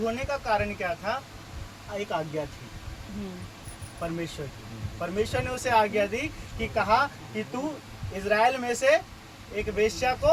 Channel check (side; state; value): both; identical; correlation 1.00